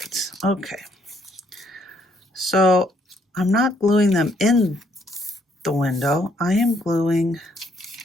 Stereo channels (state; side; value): normal; both; correlation 0.69